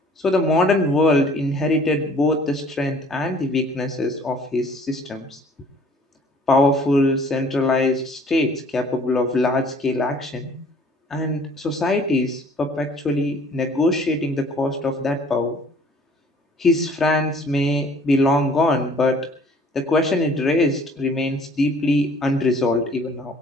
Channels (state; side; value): normal; both; correlation 0.54